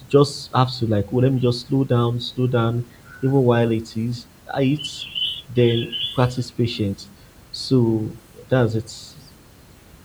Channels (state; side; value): identical; both; correlation 1.00